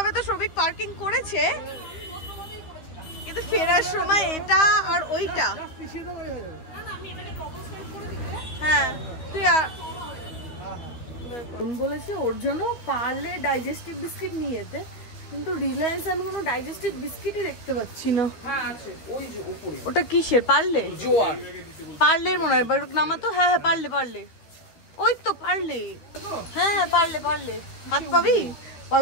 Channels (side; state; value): right; late; 13 ms